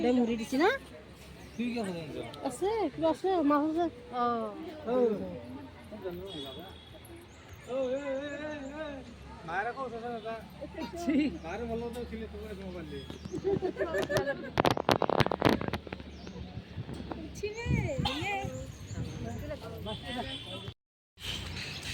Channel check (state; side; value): identical; both; correlation 1.00